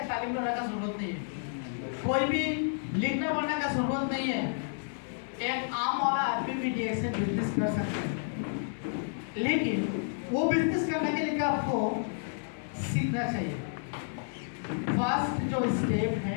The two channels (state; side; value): silent; right; digital silence